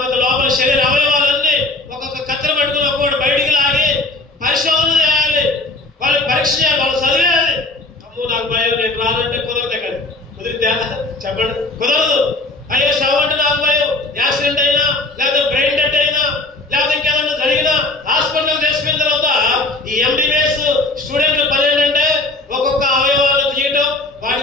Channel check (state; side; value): quieter; right; 3.0 dB